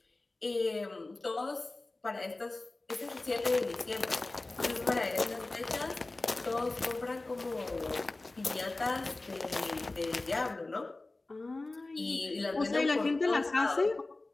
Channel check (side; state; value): right; quieter; 3.1 dB